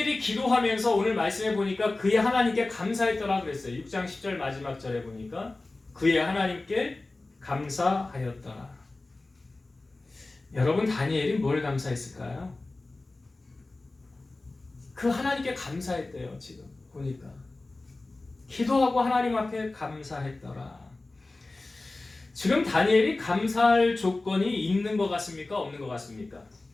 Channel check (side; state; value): right; quieter; 3.1 dB